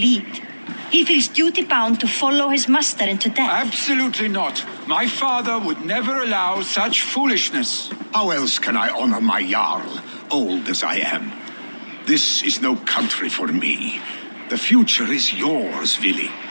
He feels duty-bound to follow his master into death. Absolutely not. My father would never allow such foolishness. How else can I honor my Jarl, old as I am? This is no country for me. The future is yours, Vili.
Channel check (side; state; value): both; inverted; correlation -1.00